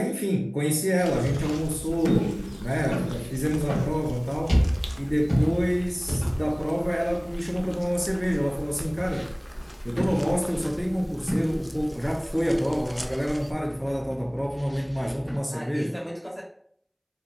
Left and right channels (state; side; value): identical; both; correlation 1.00